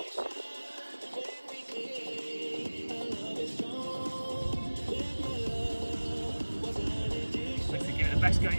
Basically give it the best go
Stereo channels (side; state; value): both; inverted; correlation -1.00